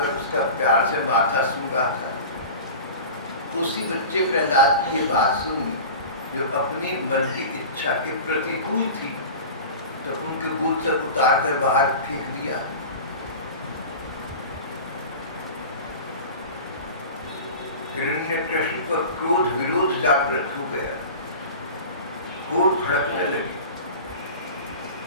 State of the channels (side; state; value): both; inverted; correlation -0.35